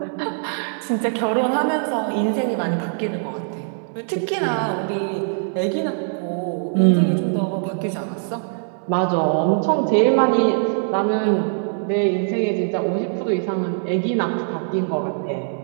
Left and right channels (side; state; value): left; silent; 64 dB below the other